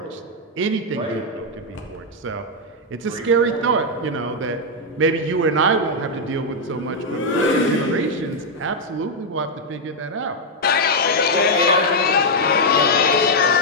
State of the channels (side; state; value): both; normal; correlation -0.01